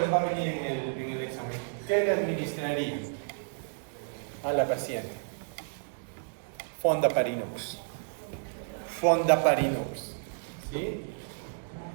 les va a venir en el examen. ¿Qué le administraría a la paciente? Fondaparinux. ¿Sí?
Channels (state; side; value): silent; left; 57 dB below the other